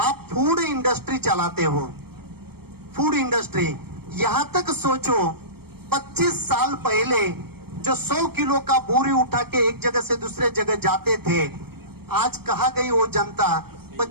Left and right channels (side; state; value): left; late; 0.95 ms